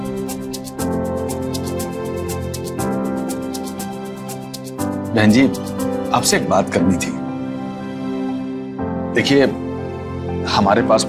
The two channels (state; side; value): identical; both; correlation 1.00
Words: बहन जी, आपसे एक बात करनी थी। देखिए, हमारे पास